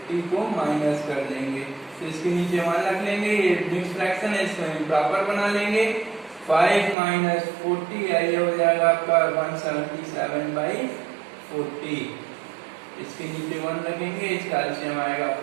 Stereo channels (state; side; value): drops out; left; at 7.0 s